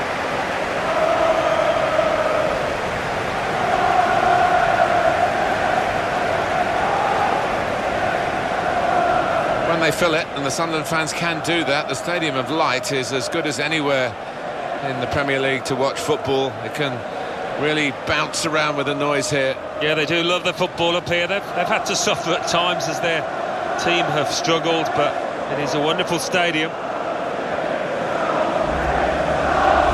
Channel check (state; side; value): identical; both; correlation 1.00